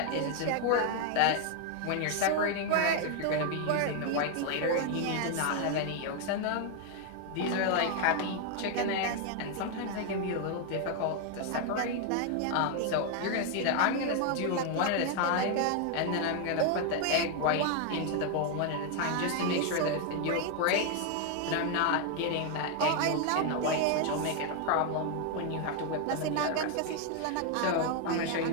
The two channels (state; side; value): different; both; correlation 0.00